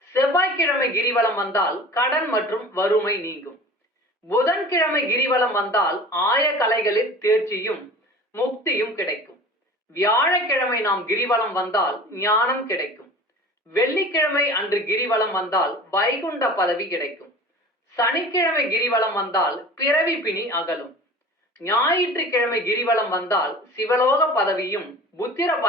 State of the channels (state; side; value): normal; both; correlation 0.40